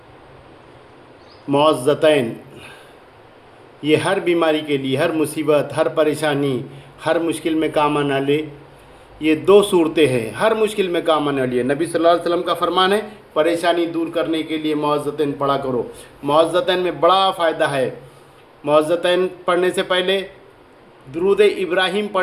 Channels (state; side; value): identical; both; correlation 1.00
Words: मुअज़्ज़तैन, ये हर बीमारी के लिए, हर मुसीबत, हर परेशानी, हर मुश्किल में काम आने वाले ये दो सूरतें हैं, हर मुश्किल में काम आने वाली है। नबी सल्लल्लाहु अलैहि वसल्लम का फरमान है, परेशानी दूर करने के लिए मुअज़्ज़तैन पढ़ा करो। मुअज़्ज़तैन में बड़ा फ़ायदा है। मुअज़्ज़तैन पढ़ने से पहले दुरूद इब्राहीम